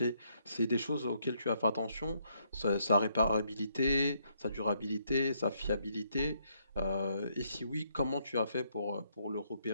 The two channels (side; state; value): both; inverted; correlation -0.73